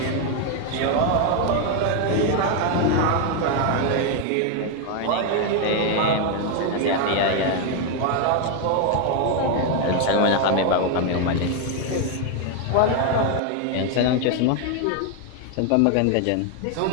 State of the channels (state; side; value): different; both; correlation 0.01